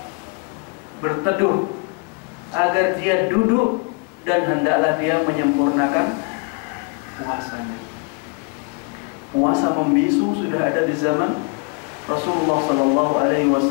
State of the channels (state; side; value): quieter; right; 33.3 dB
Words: berteduh, agar dia duduk, dan hendaklah dia menyempurnakan puasanya. Puasa membisu sudah ada di zaman Rasulullah Sallallahu Alaihi